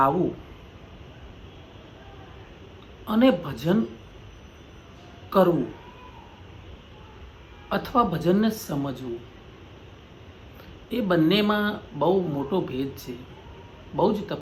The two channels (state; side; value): identical; both; correlation 1.00